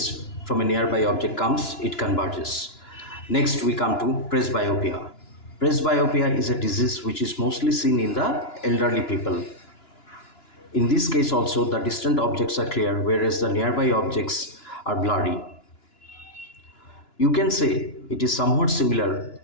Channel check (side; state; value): right; late; 2.9 ms